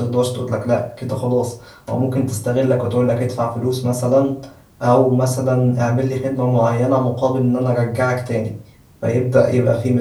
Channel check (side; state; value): both; identical; correlation 1.00